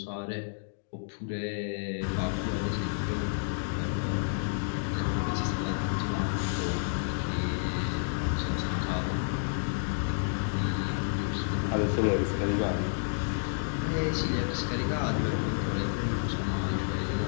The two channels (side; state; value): right; silent; digital silence